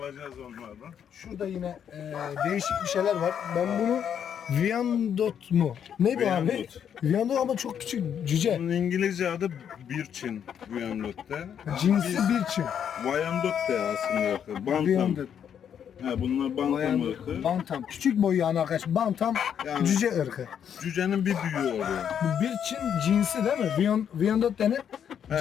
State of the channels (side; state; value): right; quieter; 8.5 dB